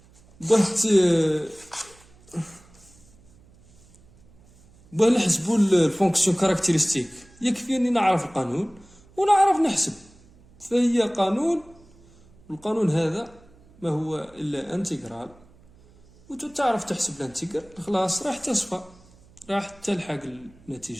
باه نحسبوا الفونكسيون كاركتيرستيك يكفي اني نعرف القانون ونعرف نحسب. فهي قانون، القانون هذا ما هو الا انتجرال، وتعرف تحسب الانتجرال خلاص راح تصفى، راح تلحق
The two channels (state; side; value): noise; right; hum, 27 dB below the sound